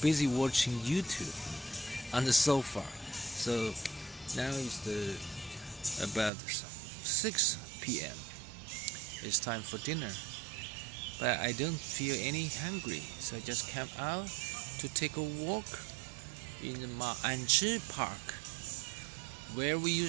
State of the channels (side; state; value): left; drops out; at 6.3 s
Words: watching YouTube on the sofa. So now it's about 6 p.m. It's time for dinner. But I don't feel any hungry, so I just came out to take a walk in the Ma'anzhi Park, where we